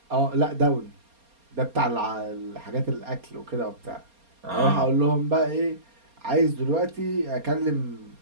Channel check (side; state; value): left; late; 4.3 ms